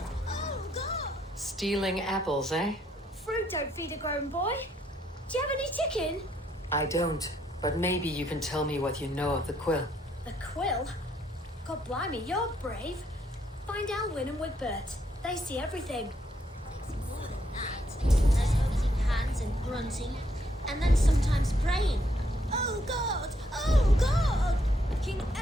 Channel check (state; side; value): normal; both; correlation 0.73